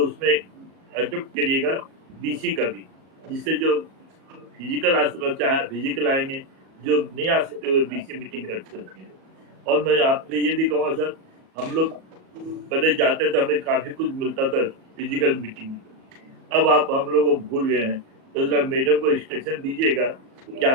उसमें अडोप्ट करिएगा बीसी का भी, जिससे जो फिजिकल आ सकता चाहे फिजिकल आएंगे, जो नहीं आ सकते हुए बीसी मीटिंग कर सकते हैं। और मैं आपसे ये भी कहूँगा सर, हम लोग पहले जाते थे हमें काफ़ी कुछ मिलता था फिजिकल मीटिंग में, अब आप हम लोग को भूल गए हैं। तो जरा मैडम को इंस्ट्रक्शन दीजिएगा कि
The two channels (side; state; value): left; late; 38 ms